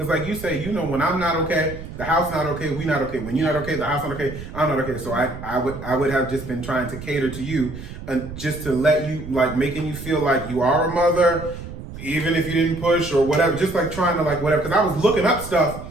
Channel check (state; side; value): noise; right; rumble, 11 dB below the sound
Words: like you say, you know, when I'm not okay, the house not okay, we not okay. When you're not okay, the house not okay, I'm not okay. So I would have just been trying to cater to you and just to let you, like making you feel like you are a mother, even if you didn't push or whatever. Just like trying to like whatever. Because I was looking up